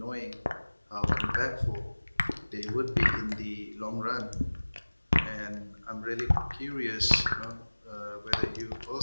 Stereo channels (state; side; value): inverted; both; correlation -1.00